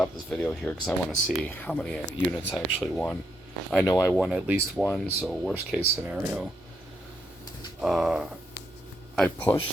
this video here because I want to see how many units I actually won. I know I won at least 1, so worst case scenario. I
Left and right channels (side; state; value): both; normal; correlation 0.78